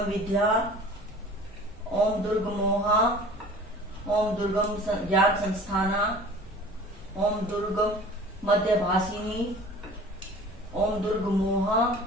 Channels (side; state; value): both; normal; correlation 0.44